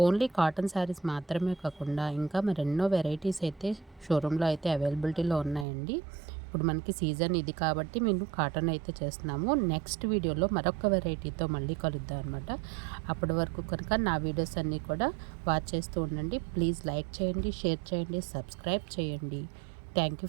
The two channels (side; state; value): left; drops out; at 5.7 s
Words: ఓన్లీ కాటన్ శారీస్ మాత్రమే కాకుండా ఇంకా మరెన్నో వెరైటీస్ అయితే షోరూంలో అయితే అవైలబిలిటీలో ఉన్నాయండి. ఇప్పుడు మనకి సీజన్ ఇది కాబట్టి మేము కాటన్ అయితే చేస్తున్నాము. నెక్స్ట్ వీడియోలో మరొక వెరైటీతో మళ్ళీ కలుద్దాం అనమాట. అప్పటి వరకు కనుక నా వీడియోస్ అన్నీ కూడా వాచ్ చేస్తూ ఉండండి. ప్లీజ్ లైక్ చేయండి, షేర్ చేయండి, సబ్స్క్రైబ్ చేయండి. Thank